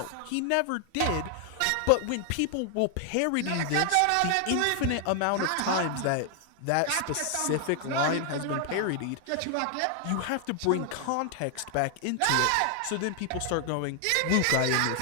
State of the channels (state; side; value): different; both; correlation 0.00